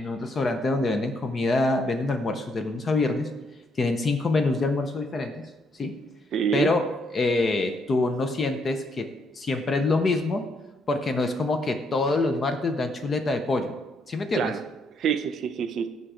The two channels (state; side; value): normal; both; correlation 0.73